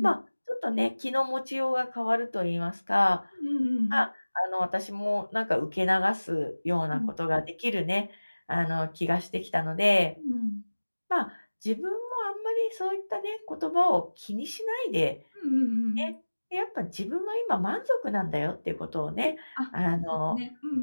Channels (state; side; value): inverted; both; correlation -1.00